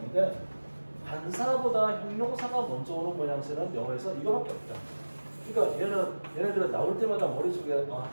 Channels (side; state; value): both; inverted; correlation -1.00